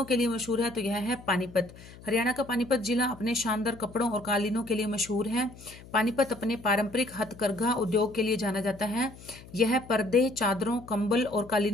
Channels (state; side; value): noise; left; hum, 19 dB below the sound